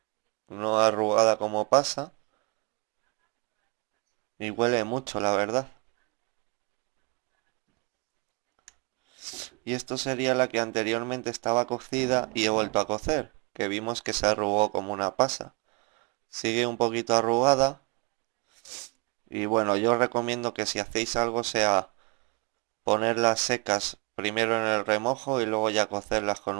no arrugada como pasa. Y huele mucho, la verdad. Y esto sería la que anteriormente estaba cocida y he vuelto a cocer, que vimos que se arrugó como una pasa. Sigue un poquito arrugada. Y bueno, yo os recomiendo que si hacéis algo sea ponerlas secas primero en el remojo y luego ya cocerlas con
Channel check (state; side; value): quieter; left; 29.8 dB